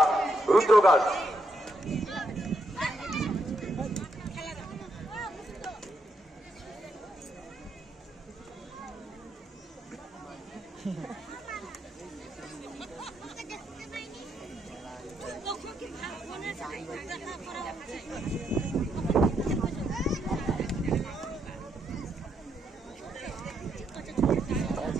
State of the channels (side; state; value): both; normal; correlation 0.78